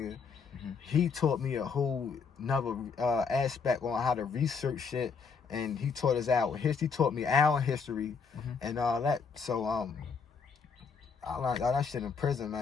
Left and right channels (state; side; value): quieter; right; 5.6 dB